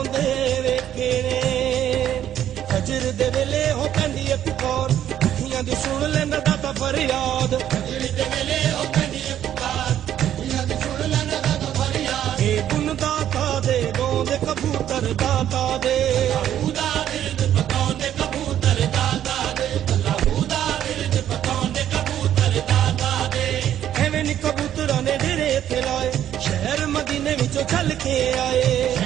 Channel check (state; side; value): quieter; left; 10.9 dB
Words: ਵੇਖੇ ਨੇ ਫਜਰ ਦੇ ਵੇਲੇ ਹੋ ਪੈਂਦੀ ਏ ਪੁਕਾਰ ਅੱਖੀਆਂ ਦੀ ਸੁਣ ਲੈਂਦਾ ਦਾਤਾ ਫਰਿਆਦ ਫਜਰ ਦੇ ਵੇਲੇ ਹੋ ਪੈਂਦੀ ਏ ਪੁਕਾਰ ਅੱਖੀਆਂ ਦੀ ਸੁਣ ਲੈਂਦਾ ਦਾਤਾ ਫਰਿਆਦ ਇਹ ਗੁਣ ਦਾਤਾ ਦੇ ਗਾਉਂਦੇ ਕਬੂਤਰ ਦਾਤਾ ਦੇ ਅੱਲਾਹੂ ਦਾ ਬਿਰਦ ਪਕਾਉਂਦੇ ਕਬੂਤਰ ਦਾਤਾ ਦੇ ਅੱਲਾਹੂ ਦਾ ਬਿਰਦ ਪਕਾਉਂਦੇ ਕਬੂਤਰ ਦਾਤਾ ਦੇ ਐਵੇਂ ਨੀ ਕਬੂਤਰਾਂ ਨੇ ਡੇਰੇ ਇੱਥੇ ਲਾਏ ਸ਼ਹਿਰ ਮਦੀਨੇ ਵਿੱਚੋਂ ਚੱਲ ਕੇ ਆਏ